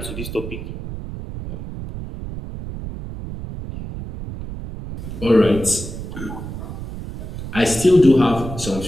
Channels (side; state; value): right; noise; rumble, 9 dB below the sound